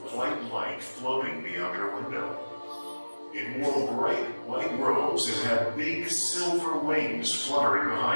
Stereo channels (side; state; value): both; inverted; correlation -1.00